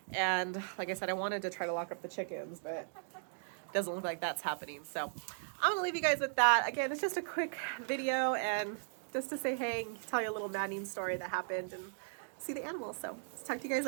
And like I said, I wanted to try to lock up the chickens, but it doesn't look like that's happening. So I'm going to leave you guys with that. Again, it's just a quick video and just to say hey and tell you a little maddening story that happened and see the animals. So talk to you guys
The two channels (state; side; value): silent; left; digital silence